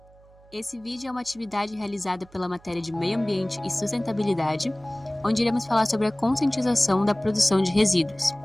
Esse vídeo é uma atividade realizada pela matéria de Meio Ambiente e Sustentabilidade, onde iremos falar sobre a conscientização da produção de resíduos.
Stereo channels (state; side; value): noise; right; hum, 27 dB below the sound